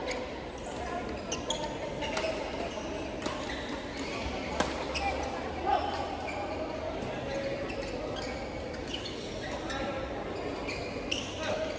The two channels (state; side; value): identical; both; correlation 1.00